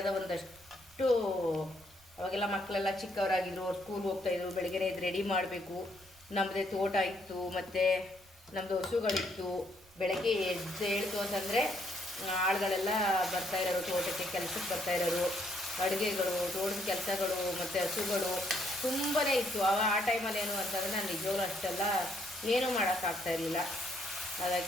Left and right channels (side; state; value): right; noise; rumble, 28 dB below the sound